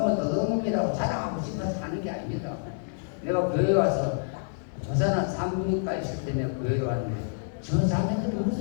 도덕놈이라고 자랑하고 싶어서 하는 게 아닙니다. 내가 교회 와서 부산한 산부인과 있을 때 내가 교회에 왔는데 저 자매들이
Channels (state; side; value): silent; right; digital silence